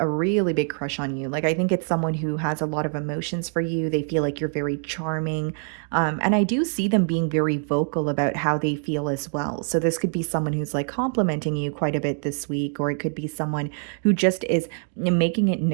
really big crush on you. Like, I think it's someone who has a lot of emotions for you. They feel like you're very charming. And I do see them being very vocal about how they feel as well. So this could be someone who's like complimenting you quite a bit this week, or it could be someone who just is making it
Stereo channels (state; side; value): silent; left; 58 dB below the other